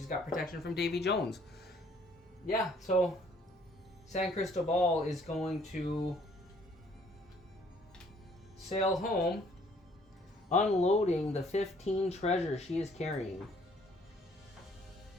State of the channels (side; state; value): both; normal; correlation 0.61